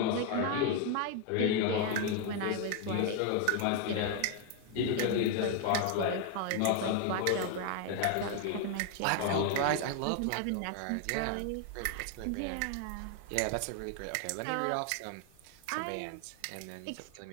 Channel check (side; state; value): both; different; correlation 0.00